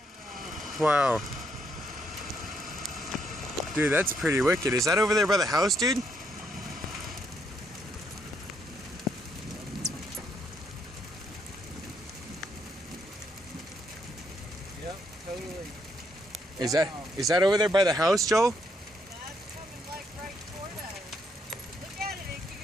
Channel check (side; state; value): both; normal; correlation 0.74